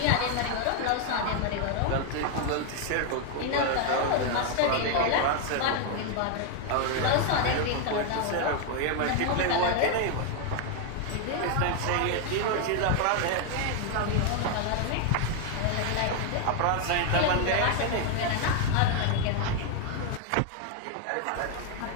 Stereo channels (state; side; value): different; both; correlation 0.01